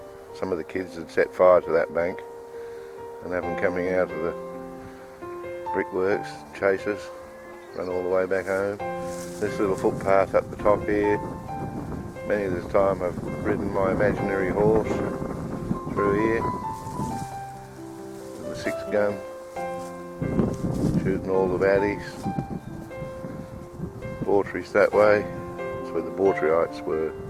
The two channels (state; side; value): identical; both; correlation 1.00